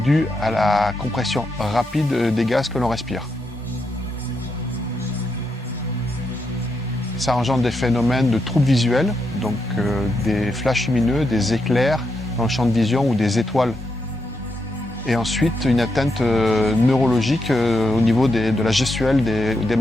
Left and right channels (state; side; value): normal; both; correlation 0.82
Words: à la compression rapide des gaz que l'on respire. Ça engendre des phénomènes de troubles visuels, donc des flashs lumineux, des éclairs dans le champ de vision ou des étoiles. Et ensuite, une atteinte neurologique au niveau de la gestuelle des